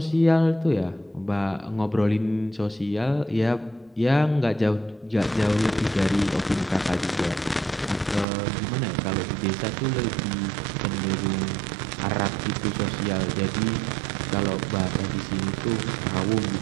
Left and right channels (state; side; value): drops out; left; at 8.2 s